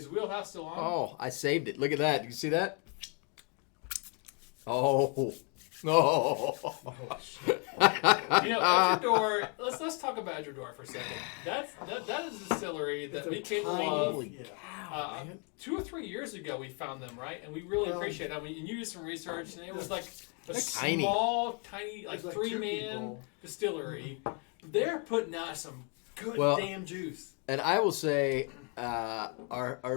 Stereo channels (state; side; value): quieter; right; 36.6 dB